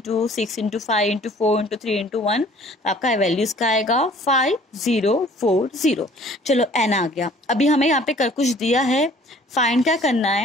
6 into 5 into 4 into 3 into 1, तो आपका वैल्यूज का आएगा 5040। चलो n आ गया। अभी हमें यहाँ पे कर कुछ दिया है, फाइंड क्या करना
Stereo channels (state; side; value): normal; both; correlation 0.53